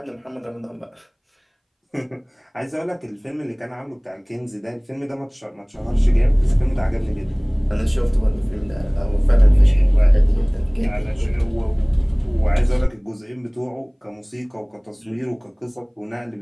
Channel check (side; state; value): both; identical; correlation 1.00